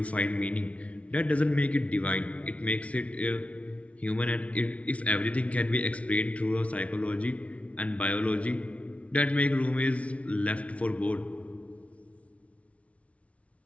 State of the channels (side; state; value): right; late; 0.064 ms